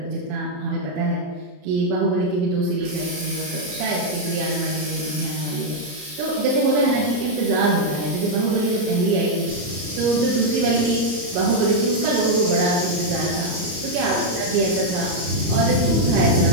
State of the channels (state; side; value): late; left; 34 ms